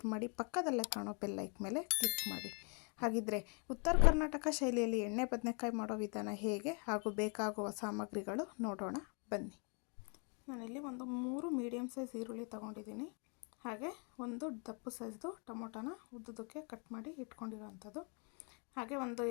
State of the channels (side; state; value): right; quieter; 36.8 dB